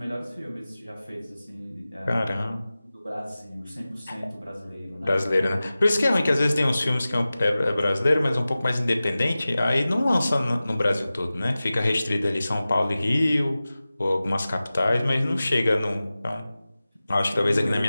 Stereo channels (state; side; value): inverted; both; correlation -0.96